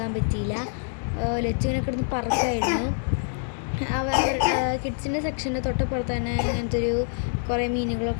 പറ്റിയില്ല. ലച്ചുവിനെ കിടന്ന് പറക്കായിരുന്നു. കിഡ്സിൻ്റെ സെക്ഷൻ്റെ തൊട്ടപ്പുറത്ത് തന്നെ ഇങ്ങനത്തെ ഒരു കുറേ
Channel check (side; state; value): right; silent; digital silence